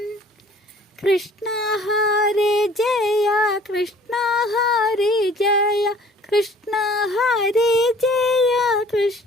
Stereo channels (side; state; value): both; normal; correlation 0.52